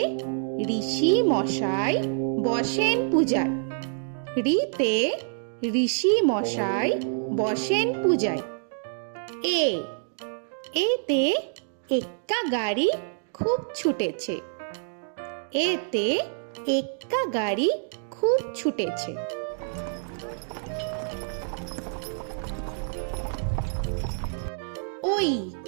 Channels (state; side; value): silent; left; digital silence